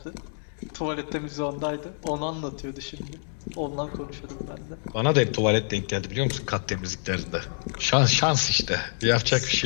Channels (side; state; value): right; silent; digital silence